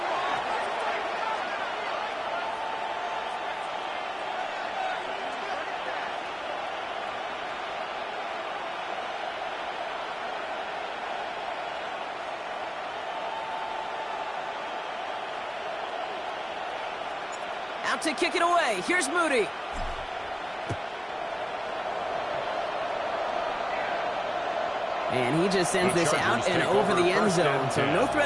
Out to kick it away. Here's Moody. And he just sends this out and over the end zone. So no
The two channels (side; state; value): both; identical; correlation 1.00